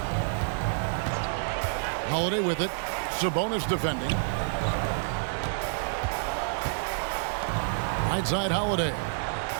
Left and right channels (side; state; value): left; silent; digital silence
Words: Holiday with it. Sabonis defending. Right side Holiday.